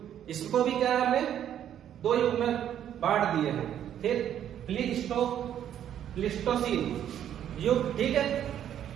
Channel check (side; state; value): left; quieter; 10.3 dB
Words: इसको भी क्या है हमने 2 युग में बांट दिए हैं। फिर प्लीस्टोसीन, युग, ठीक है,